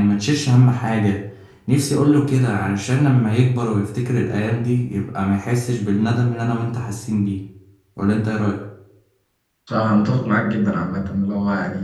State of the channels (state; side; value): identical; both; correlation 1.00